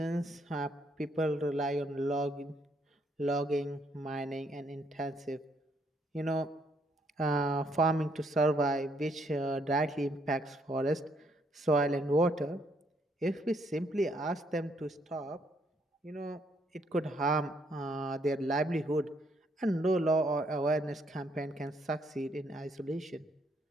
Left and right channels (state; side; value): normal; both; correlation 0.71